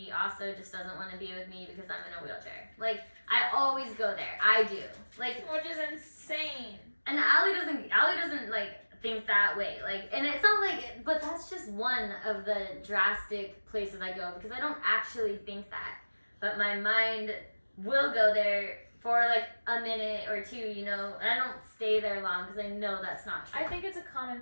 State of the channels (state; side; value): inverted; both; correlation -1.00